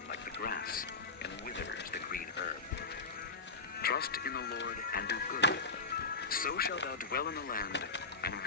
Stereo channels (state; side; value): quieter; right; 4.1 dB